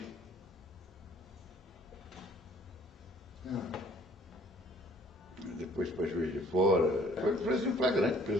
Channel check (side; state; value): both; normal; correlation 0.58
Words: Depois para Juiz de Fora. Foi prisão